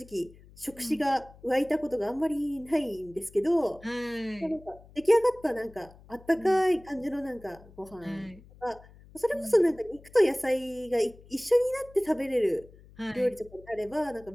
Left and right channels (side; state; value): left; noise; hum, 23 dB below the sound